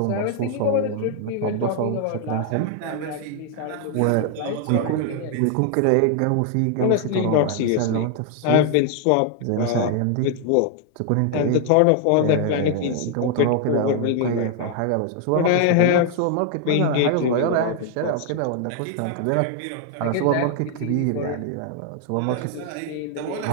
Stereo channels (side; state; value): both; different; correlation 0.00